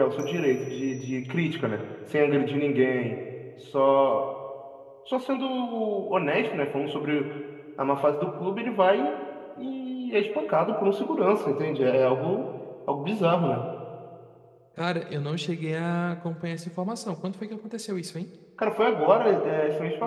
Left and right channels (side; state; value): both; identical; correlation 1.00